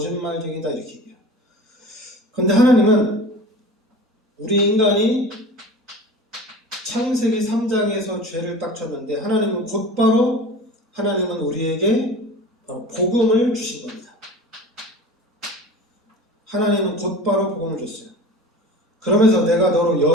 이렇게 얘기해요. 그런데 하나님은 우리 인간이 창세기 3장에서 죄를 딱 쳤는데 하나님은 곧바로 우리에게 복음을 주신 겁니다. 하나님은 곧바로 복음을 줬어요. 그러면서 내가 너로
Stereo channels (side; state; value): both; normal; correlation 0.37